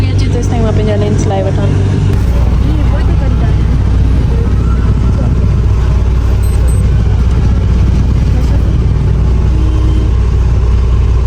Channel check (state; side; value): identical; both; correlation 1.00